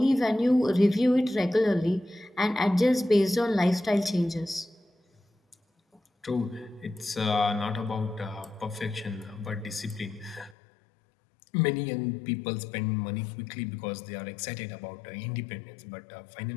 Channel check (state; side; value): drops out; right; at 10.6 s